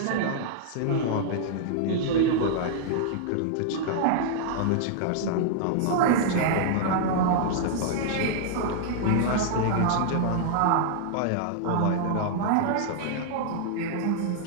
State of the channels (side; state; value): both; different; correlation -0.01